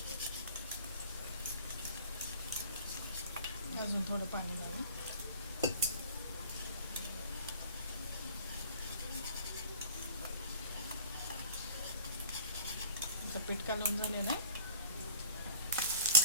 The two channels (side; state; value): both; inverted; correlation -0.45